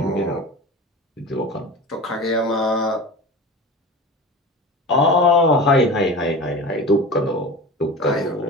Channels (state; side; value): normal; both; correlation 0.32